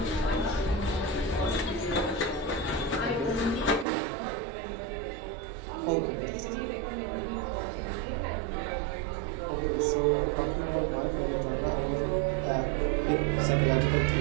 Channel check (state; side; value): drops out; left; at 3.9 s